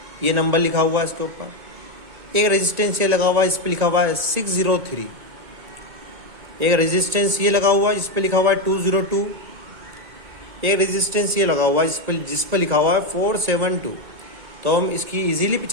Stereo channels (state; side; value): late; left; 2.2 ms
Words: ये नंबर लिखा हुआ है इसके ऊपर। एक रेजिस्टेंस ये लगा हुआ है, इस पे लिखा हुआ है 603। एक रेजिस्टेंस ये लगा हुआ है जिस पे लिखा हुआ है 202। एक रेजिस्टेंस ये लगा हुआ है जिस पर लिखा हुआ है 472। तो हम इसकी इजीली